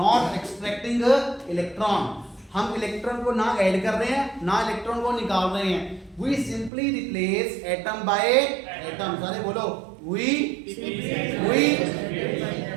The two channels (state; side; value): drops out; left; at 6.7 s